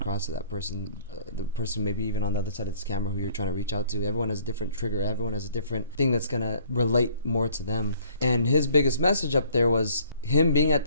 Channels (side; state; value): both; inverted; correlation -0.57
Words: to that person, the person maybe even on the other side of this camera who you're trying to reach out to. Everyone has a different trigger. Everyone has a different thing that's going to relate more to them. And his biggest message up there was him being at